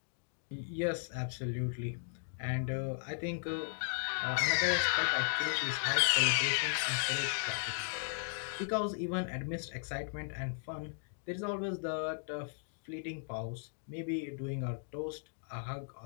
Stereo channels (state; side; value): silent; right; digital silence